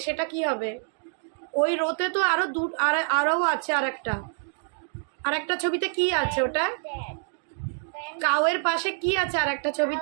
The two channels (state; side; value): silent; left; 60 dB below the other